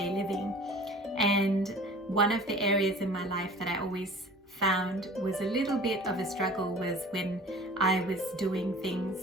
living. And one of the areas in my life that I always found was a little bit of a struggle was when I was doing things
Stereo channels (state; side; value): normal; both; correlation 0.44